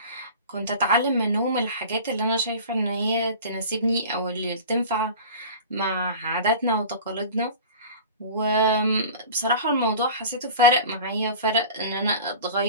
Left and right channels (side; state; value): both; inverted; correlation -0.38